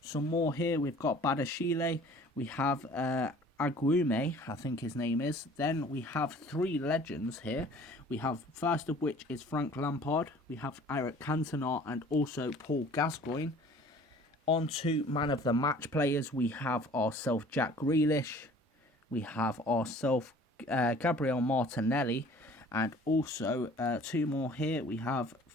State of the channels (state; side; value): normal; both; correlation 0.50